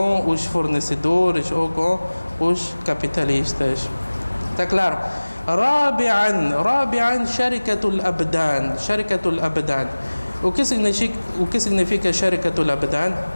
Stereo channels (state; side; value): inverted; both; correlation -1.00